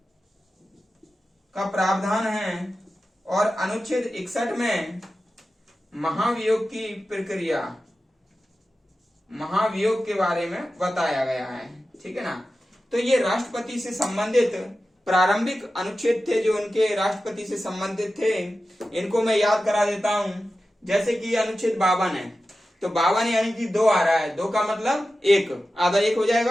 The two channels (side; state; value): both; normal; correlation 0.93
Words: का प्रावधान है। और अनुच्छेद 61 में महाभियोग की प्रक्रिया, महाभियोग के बारे में बताया गया है। ठीक है ना, तो ये राष्ट्रपति से संबंधित प्रारंभिक अनुच्छेद थे जो उनके राष्ट्रपति से संबंधित थे। इनको मैं याद करा देता हूं। जैसे कि अनुच्छेद 52 है, तो 52 यानी कि दो आ रहा है, दो का मतलब एक, आधा एक हो